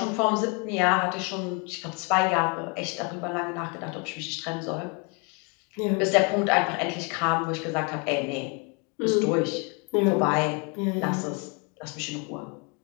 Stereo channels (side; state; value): right; quieter; 33.5 dB